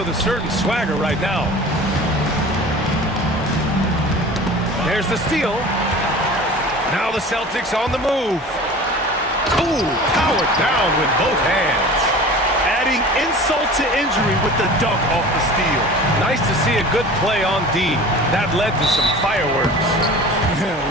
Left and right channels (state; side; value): normal; both; correlation 0.39